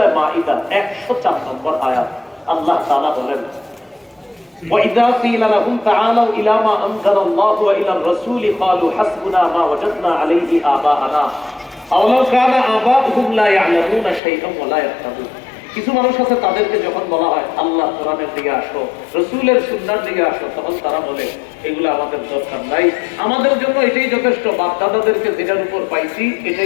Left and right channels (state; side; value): drops out; right; at 14.2 s